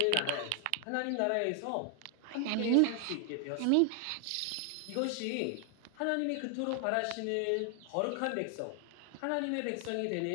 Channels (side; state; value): both; different; correlation 0.00